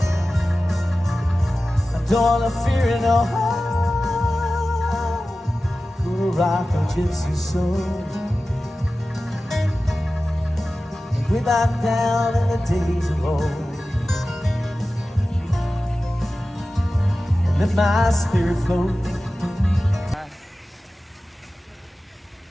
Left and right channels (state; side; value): normal; both; correlation 0.95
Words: I don't wanna fear it no more. Gonna rock a gypsy soul. Way back down in the days of old, and let my spirit float.